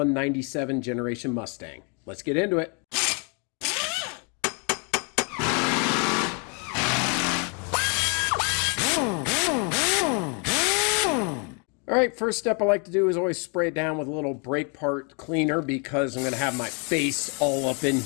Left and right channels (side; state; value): right; quieter; 36.4 dB